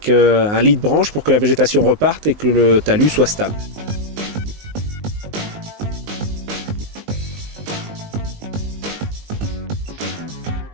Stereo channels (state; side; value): late; left; 19 ms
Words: un lit de branche pour que la végétation reparte et que le talus soit stable.